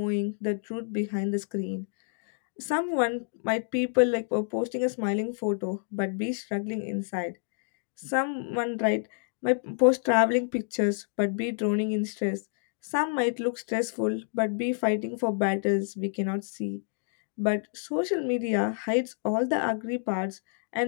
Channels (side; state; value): right; silent; digital silence